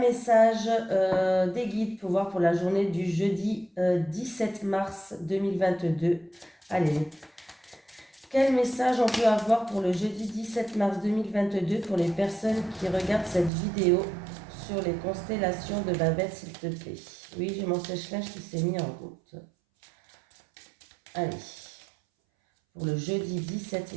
des guides pour voir pour la journée du jeudi 17 mars 2022. Allez, quel message on peut avoir pour le jeudi 17 mars 2022 pour les personnes qui regardent cette vidéo sur les constellations de Babel, s'il te plaît? Oui, j'ai mon sèche-linge qui s'est mis en route. Allez, pour le jeudi 17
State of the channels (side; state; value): left; drops out; at 13.5 s